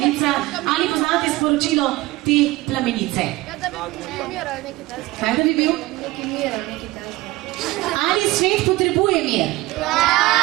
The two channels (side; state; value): left; quieter; 19.4 dB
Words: Ali poznate sporočilo te plamenice? Da bi mir ali nekaj takega. Kaj da bi bil? Neki mir ali nekaj takega. Ali svet potrebuje mir?